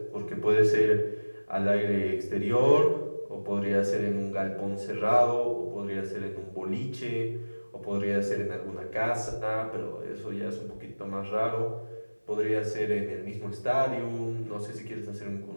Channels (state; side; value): inverted; both; correlation -1.00